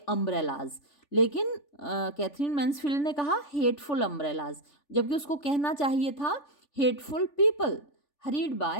लेकिन कैथरीन मैन्सफील्ड ने कहा हेटफुल अम्ब्रेलाज, जबकि उसको कहना चाहिए था hateful people hurried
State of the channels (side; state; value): right; late; 3.4 ms